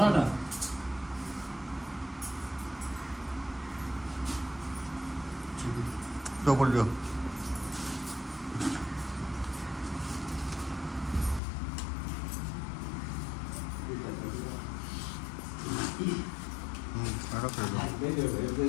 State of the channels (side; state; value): right; drops out; at 11.4 s